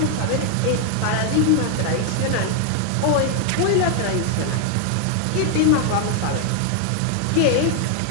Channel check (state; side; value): different; both; correlation 0.00